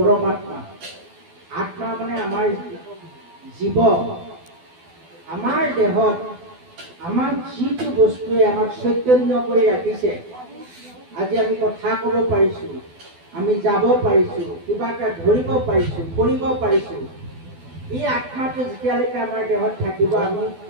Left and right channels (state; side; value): late; left; 12 ms